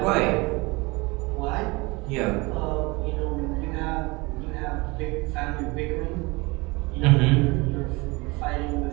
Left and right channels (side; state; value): left; quieter; 25.0 dB